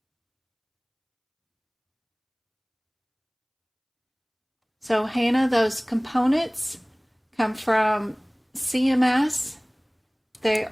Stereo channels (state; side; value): identical; both; correlation 1.00